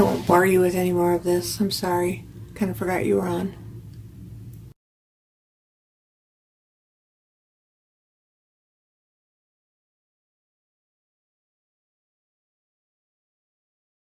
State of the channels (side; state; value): both; identical; correlation 1.00